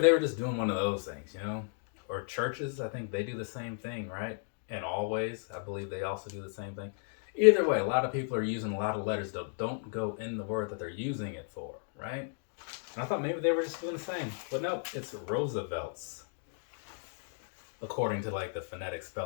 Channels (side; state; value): right; silent; 55 dB below the other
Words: were just doing one of those things, you know? Or churches, I think they do the same thing, right? And Always, I believe they also do the same thing. Either way, a lot of people are using a lot of letters that don't go in the word that they're using it for, right? And I thought maybe they were just doing the same. But no, it's Roosevelt's. According to like the phonetic